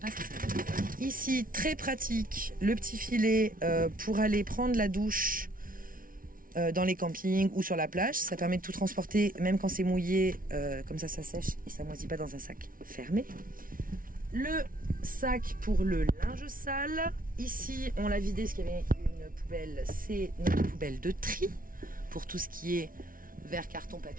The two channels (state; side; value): late; left; 0.41 ms